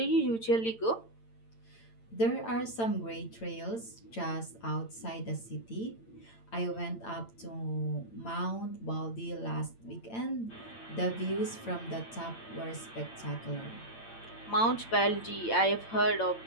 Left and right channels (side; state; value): right; late; 8.8 ms